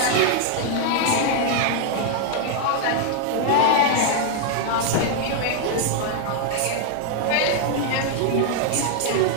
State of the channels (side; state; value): both; different; correlation 0.00